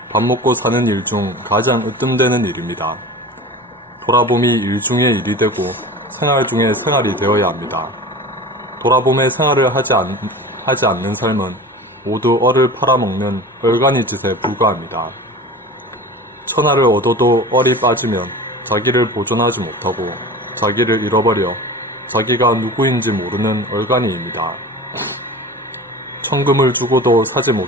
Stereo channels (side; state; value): both; normal; correlation 0.35